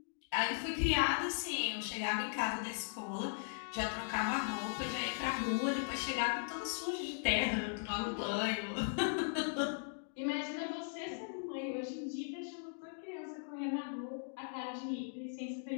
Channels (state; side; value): silent; right; digital silence